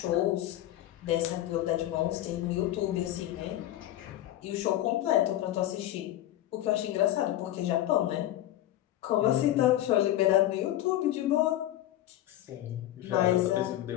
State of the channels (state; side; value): quieter; right; 13.7 dB